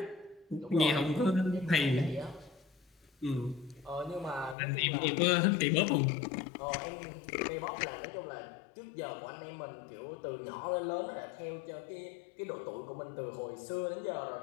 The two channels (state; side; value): drops out; right; at 4.5 s